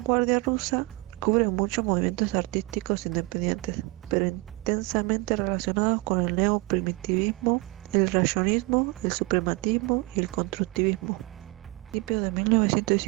rusa cubre muchos movimientos artísticos independientes, pero intensamente relacionados con el neoprimitivismo, el rayonismo, el suprematismo y el constructivismo. A principios de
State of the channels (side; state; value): left; quieter; 24.2 dB